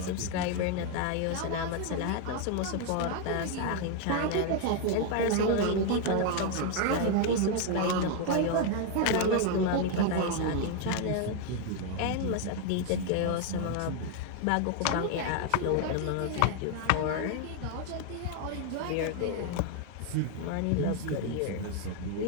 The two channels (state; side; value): different; both; correlation 0.01